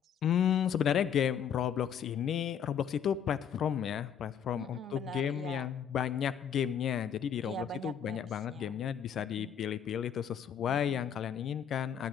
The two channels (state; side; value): quieter; right; 8.3 dB